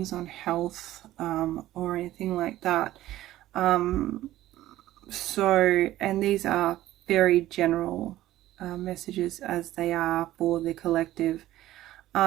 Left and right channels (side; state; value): left; quieter; 14.7 dB